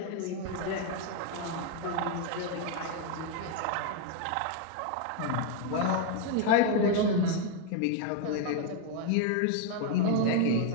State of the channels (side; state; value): both; different; correlation 0.01